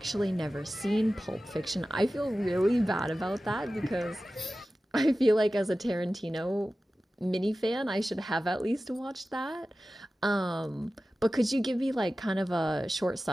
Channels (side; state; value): both; normal; correlation 0.95